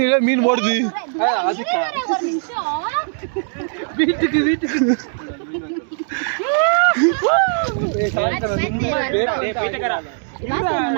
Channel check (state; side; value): silent; left; digital silence